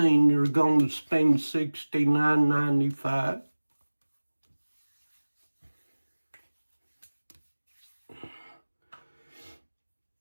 you're going to spend $69.95.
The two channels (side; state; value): both; inverted; correlation -1.00